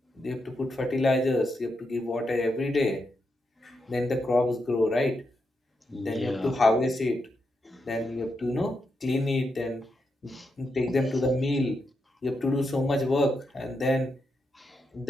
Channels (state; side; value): normal; both; correlation 0.84